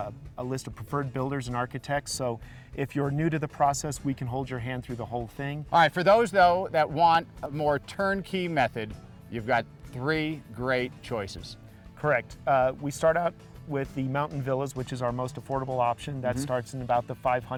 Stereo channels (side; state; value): both; identical; correlation 1.00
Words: list of preferred builders and architects, so if you're new to the process, we can hold your hand through the whole thing. All right, for those, though, that want a more turnkey method, you've got 3 great choices. Correct. We start out with the mountain villas, which is our most affordable option. That starts in about the